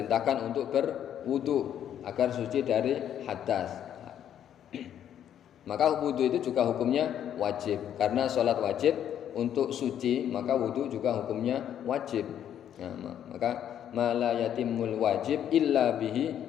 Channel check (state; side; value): quieter; right; 10.0 dB